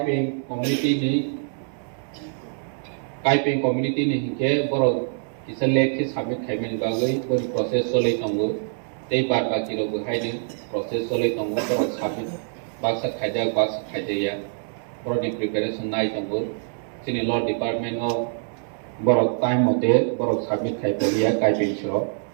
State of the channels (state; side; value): silent; left; digital silence